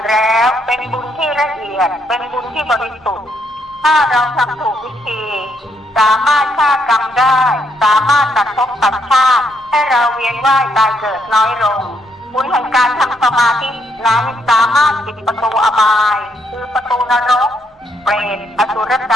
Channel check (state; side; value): normal; both; correlation 0.74